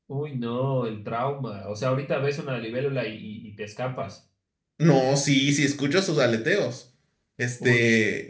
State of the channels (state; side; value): identical; both; correlation 1.00